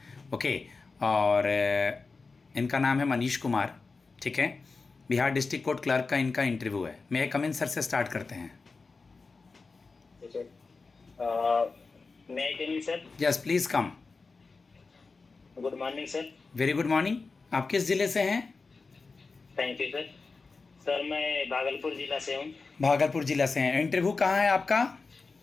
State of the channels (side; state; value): right; quieter; 4.2 dB